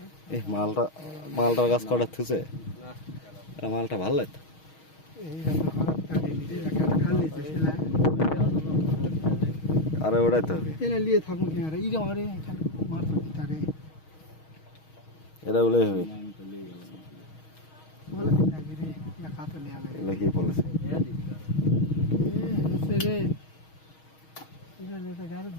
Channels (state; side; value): late; right; 6.4 ms